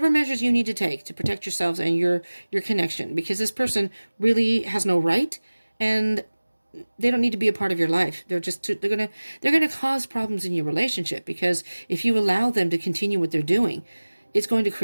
measures you need to take to protect yourselves and your connection, because this person really has no right, and they don't need to be a part of your life. They're gonna cause problems in your relationship, because if you allow them to continue what they're doing, it's going to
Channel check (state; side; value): inverted; both; correlation -1.00